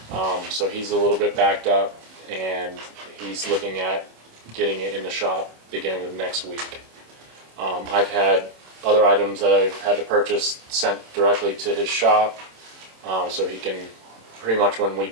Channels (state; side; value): late; left; 27 ms